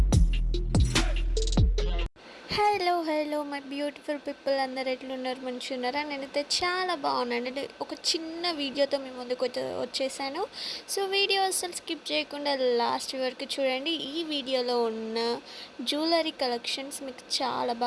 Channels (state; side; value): identical; both; correlation 1.00